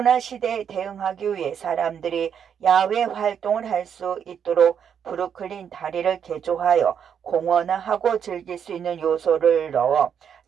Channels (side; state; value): left; quieter; 8.0 dB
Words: 시대에 대응하기 위해 사람들이 야외 활동을 할 수 있도록 브루클린 다리를 개조하여 공원화하고 즐길 수 있는 요소를 넣어